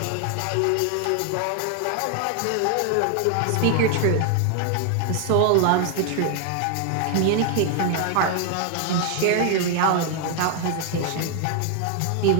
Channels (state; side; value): different; both; correlation 0.00